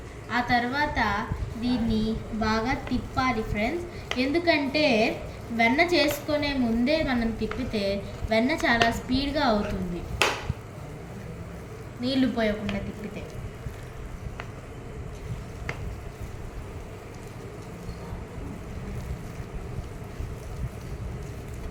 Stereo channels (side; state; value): both; identical; correlation 1.00